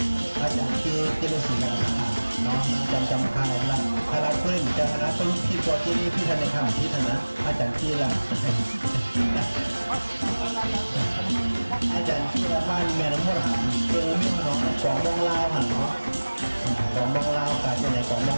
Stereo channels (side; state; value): both; inverted; correlation -1.00